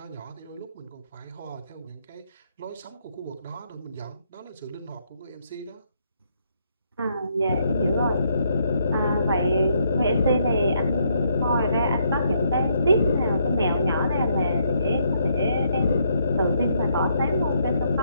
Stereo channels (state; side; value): inverted; both; correlation -0.73